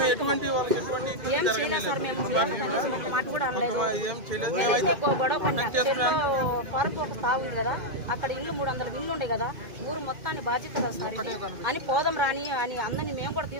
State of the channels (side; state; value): left; late; 2.5 ms